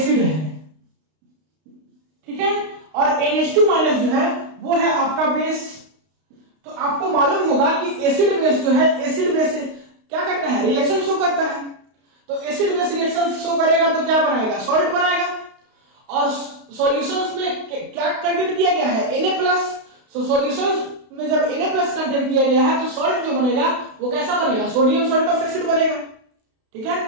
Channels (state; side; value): late; left; 32 ms